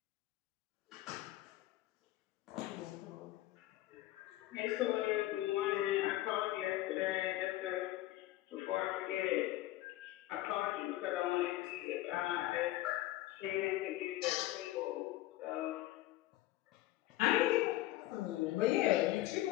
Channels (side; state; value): right; quieter; 16.2 dB